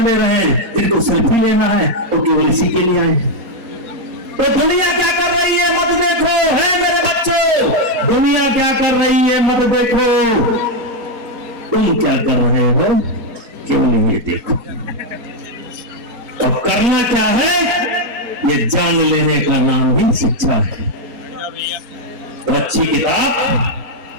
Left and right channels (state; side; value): late; left; 4.2 ms